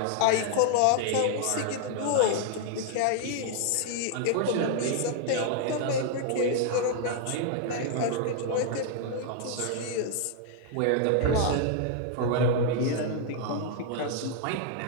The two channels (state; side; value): different; both; correlation 0.00